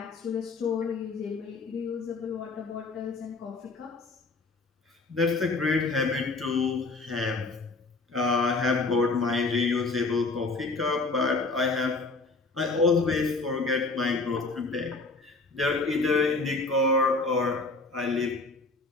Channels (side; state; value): right; quieter; 3.6 dB